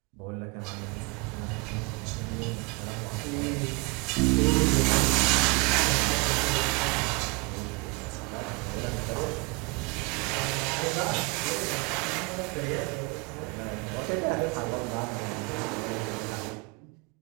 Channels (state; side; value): quieter; left; 27.6 dB